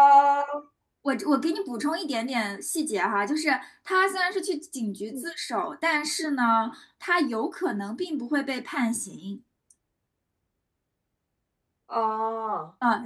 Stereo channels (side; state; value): both; identical; correlation 1.00